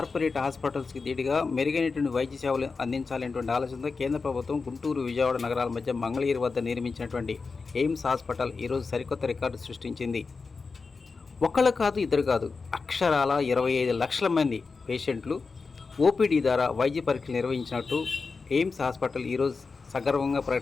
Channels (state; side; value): quieter; right; 4.5 dB